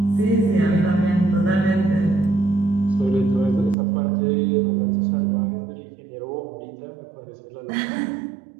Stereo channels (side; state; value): left; drops out; at 3.8 s